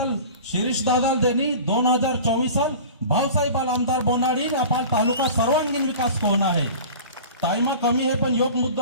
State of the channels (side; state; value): both; inverted; correlation -0.38